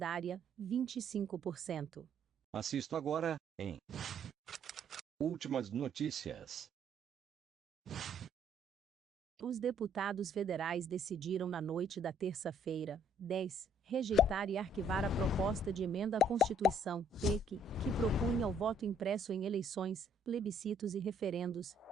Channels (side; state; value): both; normal; correlation 0.63